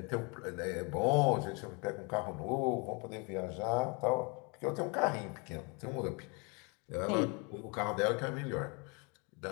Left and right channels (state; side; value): quieter; right; 31.4 dB